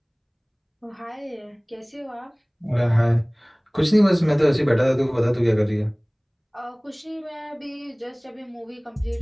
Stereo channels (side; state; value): both; identical; correlation 1.00